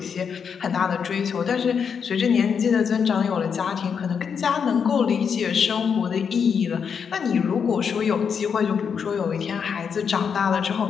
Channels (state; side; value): quieter; right; 6.7 dB